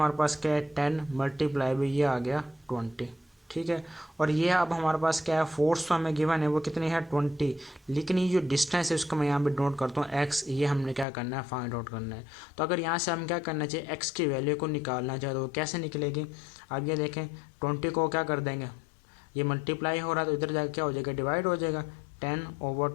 पास क्या है 10 मल्टीप्लाई बाई ये आ गया 20, ठीक है। और ये अब हमारे पास क्या है फोर्स तो हमें गिवन है वो कितनी है 20, लेकिन ये जो डिस्टेंस है उसको मैं यहाँ पे नोट करता हूँ एक्स, ये हमने क्या करना है फाइंड आउट करना है। तो अगर यहाँ से हम क्या करना चाहिए एक्स की वैल्यू को निकालना चाहे तो वो कैसे निकलेगी, अब ये देखें 20 को क्या कर देंगे ये मल्टीप्लाई हो रहा है तो इधर जाकर क्या हो जाएगा डिवाइड हो जाएगा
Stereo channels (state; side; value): drops out; right; at 11.1 s